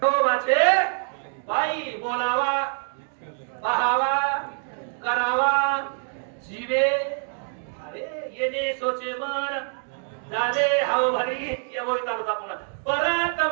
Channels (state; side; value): silent; left; 58 dB below the other